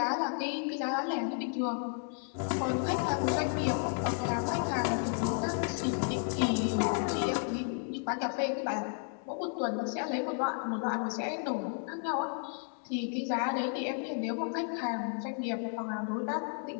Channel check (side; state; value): right; silent; 55 dB below the other